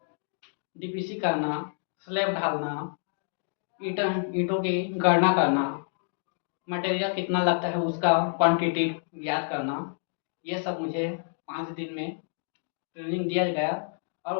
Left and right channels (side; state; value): right; silent; digital silence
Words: डीपीसी करना, स्लैब ढालना, ईंटों की गणना करना, मटेरियल कितना लगता है उसका क्वांटिटी याद करना, ये सब मुझे 5 दिन में ट्रेनिंग दिया गया।